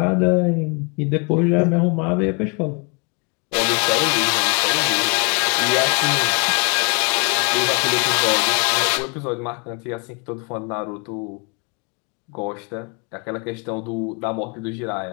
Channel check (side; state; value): right; quieter; 35.2 dB